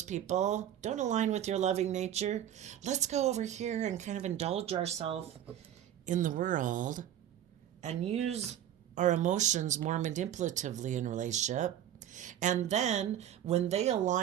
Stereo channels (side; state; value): left; quieter; 10.9 dB